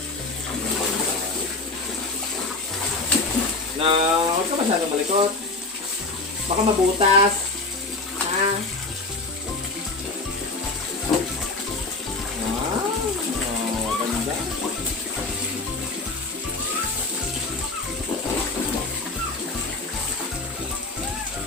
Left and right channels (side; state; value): right; quieter; 3.4 dB